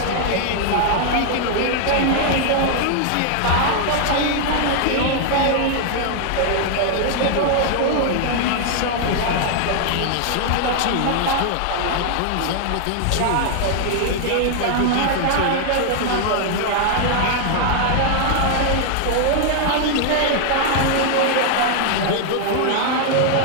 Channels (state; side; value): different; both; correlation 0.00